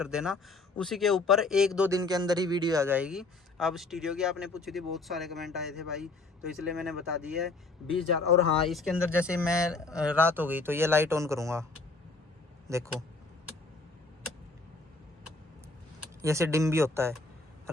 देना, उसी के ऊपर 1-2 दिन के अंदर ही वीडियो आ जाएगी। अब स्टीरियो की आपने पूछी थी, बहुत सारे कमेंट आए थे भाई, तो इसलिए मैंने बता दी है 20,000। और हाँ, इसके अंदर जैसे मैं रात हो गई तो ये लाइट ऑन करूँगा, देखो जैसे डिम भी होता है,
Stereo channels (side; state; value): right; quieter; 3.5 dB